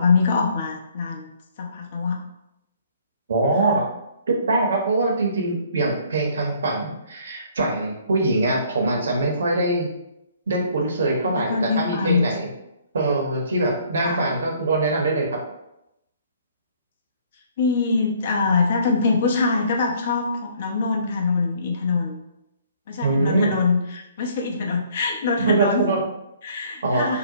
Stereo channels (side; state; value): both; inverted; correlation -0.60